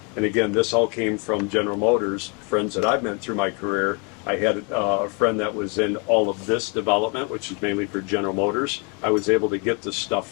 And again, this all came from General Motors, friends that I've met through my career. I had a friend that was in all of this development, which is mainly for General Motors. I was able to get this stuff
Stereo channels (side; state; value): right; quieter; 33.7 dB